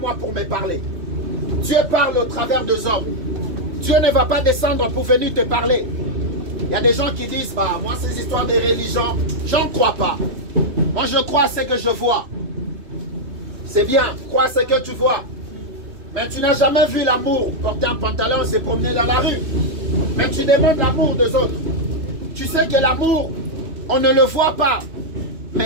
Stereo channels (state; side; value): late; left; 3.1 ms